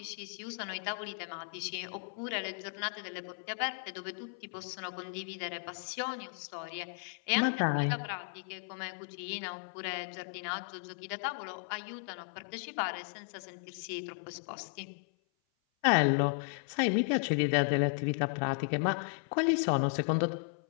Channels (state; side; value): silent; right; 54 dB below the other